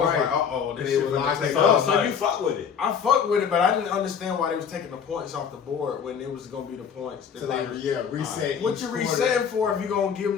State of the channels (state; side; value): quieter; right; 7.2 dB